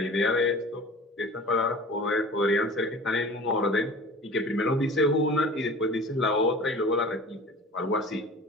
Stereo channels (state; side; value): normal; both; correlation 0.40